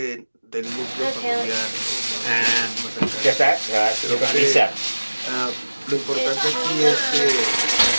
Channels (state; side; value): inverted; both; correlation -1.00